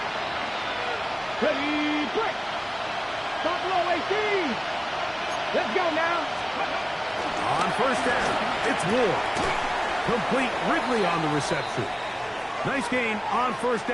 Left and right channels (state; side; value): identical; both; correlation 1.00